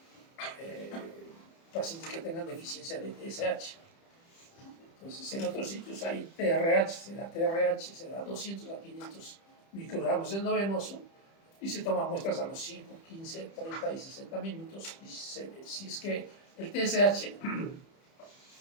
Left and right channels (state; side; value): late; right; 30 ms